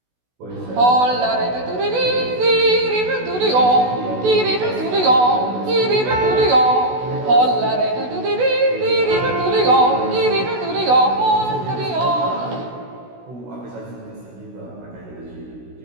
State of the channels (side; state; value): left; late; 16 ms